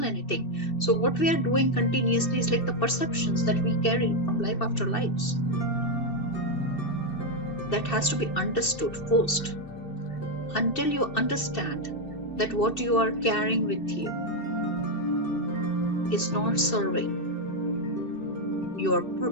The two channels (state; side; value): late; right; 2.7 ms